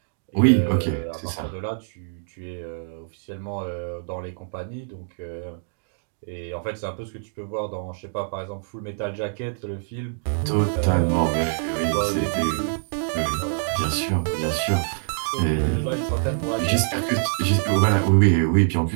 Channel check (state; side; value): silent; left; digital silence